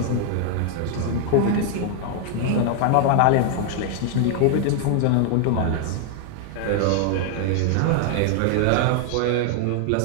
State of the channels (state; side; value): different; both; correlation 0.00